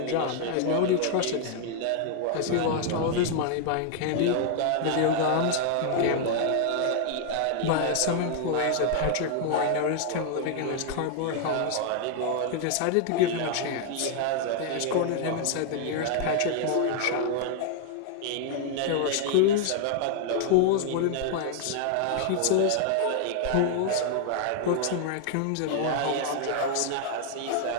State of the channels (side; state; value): both; different; correlation 0.00